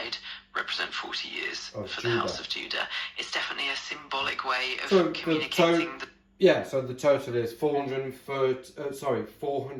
represent 40 years for the house of Judah. It's definitely a symbolic way of communicating the... Yeah, so the total is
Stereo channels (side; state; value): both; identical; correlation 1.00